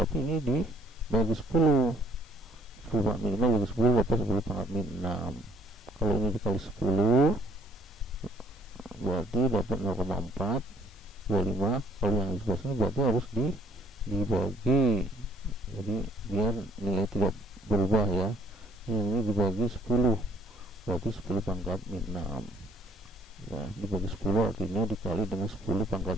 ini dibagi 10 pangkat min 5 bagi 10 dapat 10 pangkat min 6. Kalau ini dikali 10 berarti dapat 0,425. Kalau yang di sebelah sini berarti harus dibagi, jadi biar nilai tidak berubah ya. Yang ini dibagi 10 berarti 10 pangkat min 6 ya, dibagi 10 artinya dikali dengan 10 pangkat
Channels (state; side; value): normal; both; correlation 0.62